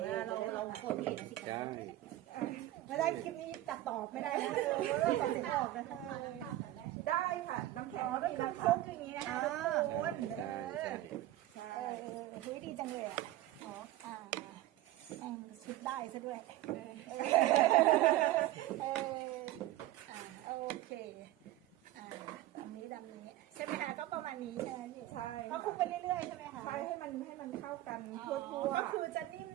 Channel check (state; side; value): quieter; left; 15.4 dB